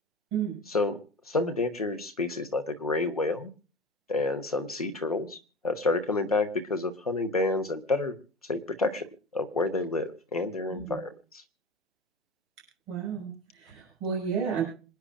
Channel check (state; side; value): normal; both; correlation 0.32